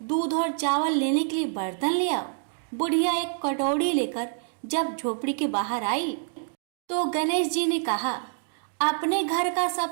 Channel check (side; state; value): left; silent; digital silence